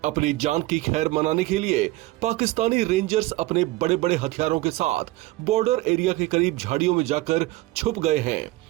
अपनी जान की खैर मनाने के लिए पाकिस्तानी रेंजर्स अपने बड़े बड़े हथियारों के साथ बॉर्डर एरिया के करीब झाड़ियों में जाकर छुप गए हैं,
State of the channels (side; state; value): left; quieter; 18.9 dB